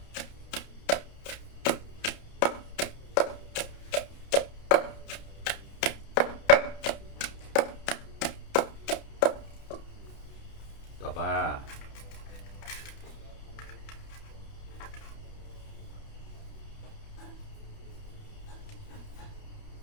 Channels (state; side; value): late; right; 30 ms